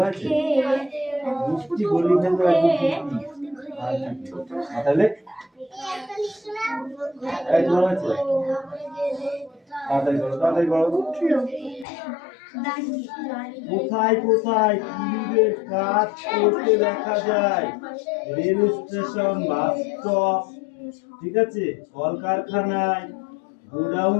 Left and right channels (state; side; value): drops out; right; at 11.9 s